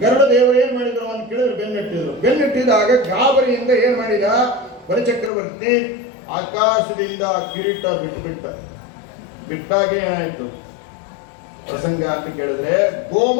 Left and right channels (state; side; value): drops out; right; at 5.3 s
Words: ಗರುಡ ದೇವರು ಏನ್ ಮಾಡಿದ್ರು ಅಂತ ಕೇಳಿದ್ರೆ ಬೆನ್ನೆಟ್ಟಿದ್ರು. ಬೆನ್ನೆಟ್ಟಿದಾಗ ಗಾಬರಿಯಿಂದ ಏನ್ ಮಾಡಿದ ಬಲಿಚಕ್ರವರ್ತಿ? ಆಕಾಶದಿಂದ ಕಿರೀಟ ಬಿಟ್ಟಾಗ ಏನಾಯ್ತು ಪ್ರಸಂಗ ಅಂತ ಕೇಳಿದ್ರೆ,